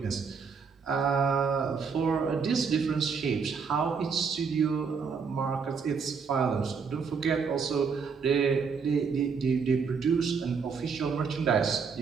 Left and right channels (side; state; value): left; quieter; 5.7 dB